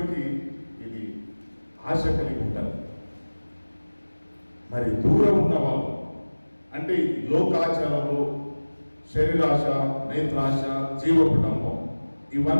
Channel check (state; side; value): inverted; both; correlation -1.00